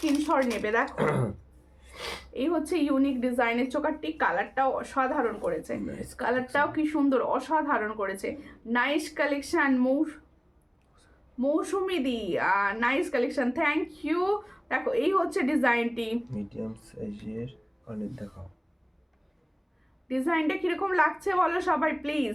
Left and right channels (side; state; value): both; identical; correlation 1.00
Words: নেবে। দেখো এই হচ্ছে ইউনিক ডিজাইনের চোকারটি, কালারটাও অসাধারণ করেছে, কালারটাও কি সুন্দর, অসাধারণ করেছে। নাইস কালেকশন মৌসুমি দি, নাইস কালেকশন, থ্যাংক ইউ। দেখো এই হচ্ছে ডিজাইনটি, মিডিয়াম সাইজের অনেক দেখাও। ডিজাইনটা কিরকম লাগছে বলো সবাই প্লিজ।